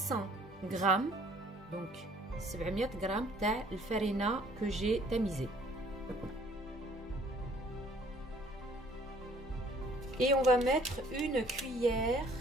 grammes, donc 700 grammes تاع الفرينة que j'ai tamisé. Et on va mettre une cuillère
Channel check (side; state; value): both; normal; correlation 0.57